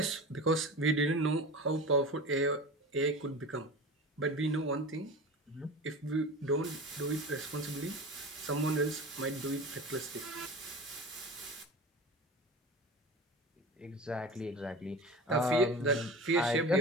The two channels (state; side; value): normal; both; correlation 0.32